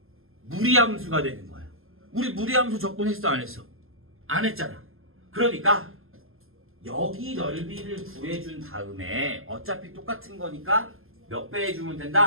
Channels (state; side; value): late; left; 0.61 ms